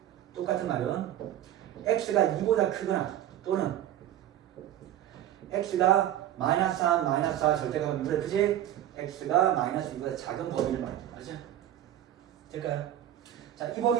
똑같은 말은 x가 2보다 크거나 또는 x가 마이너스 3, 마이너스 4 절대값은 2보다 크지? x가 마이너스 2보다 작은 범위를 말이죠. 알죠? 될까요? 자, 이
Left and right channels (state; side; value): quieter; left; 12.0 dB